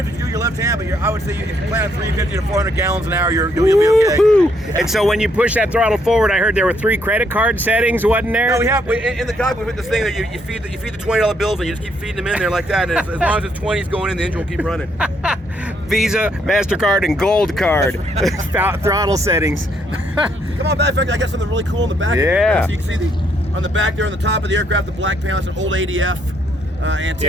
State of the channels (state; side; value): normal; both; correlation 0.72